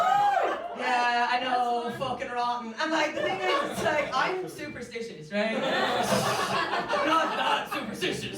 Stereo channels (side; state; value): both; identical; correlation 1.00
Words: Yeah, I know, fucking rotten. And like, the thing is, it's like, I'm superstitious, right? I'm not that